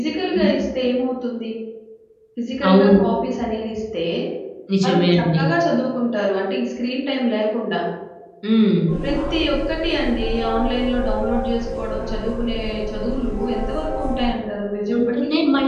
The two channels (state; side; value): identical; both; correlation 1.00